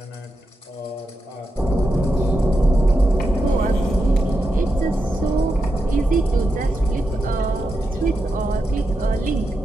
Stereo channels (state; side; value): normal; both; correlation 0.87